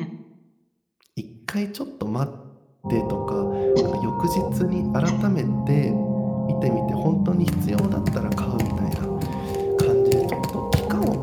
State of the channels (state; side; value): identical; both; correlation 1.00